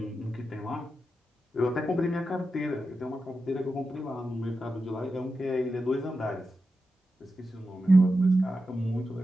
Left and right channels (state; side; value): normal; both; correlation 0.90